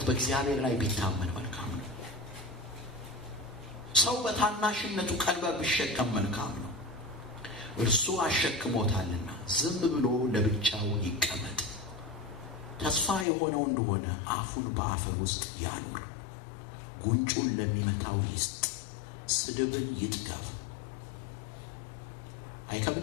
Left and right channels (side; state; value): right; drops out; at 13.2 s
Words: በእግዚአብሔር ላይ ቢታመን መልካም ነው። ሰው በታናሽነቱ ቀንበር ቢሸከም መልካም ነው። እርሱ አሸክሞታልና ዝም ብሎ ለብቻው ይቀመጥ። ተስፋ የሆነው እንደሆነ አፉን በአፈር ውስጥ ያኑር፣ ጉንጩን ለሚመታው ይስጥ፣ ስድብን ይጥገብ።